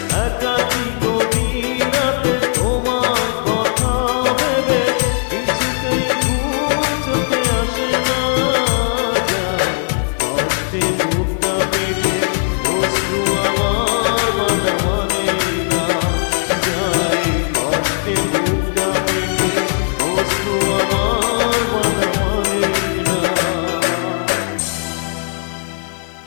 একাকী গভীর রাতে তোমার কথা ভেবে কিছুতেই ঘুম চোখে আসে না। যায় কষ্টে বুকটা পেটে অশ্রু আমার বাধা মানে না। যায় কষ্টে বুকটা পেটে অশ্রু আমার বাধা মানে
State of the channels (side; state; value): right; silent; 55 dB below the other